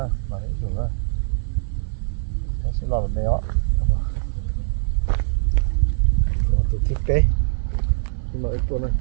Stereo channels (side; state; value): left; silent; 57 dB below the other